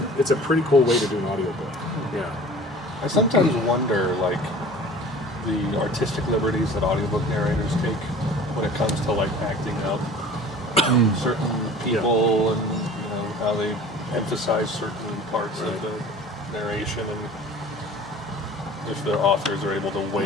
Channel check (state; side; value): normal; both; correlation 0.44